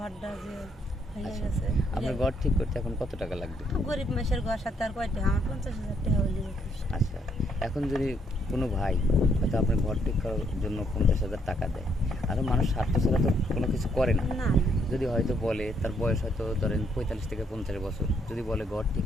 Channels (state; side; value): normal; both; correlation 0.72